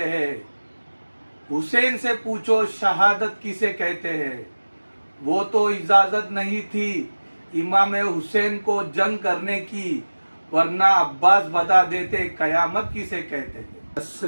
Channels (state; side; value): inverted; both; correlation -1.00